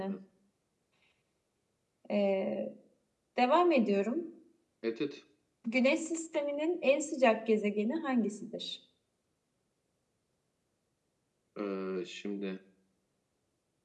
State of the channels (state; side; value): identical; both; correlation 1.00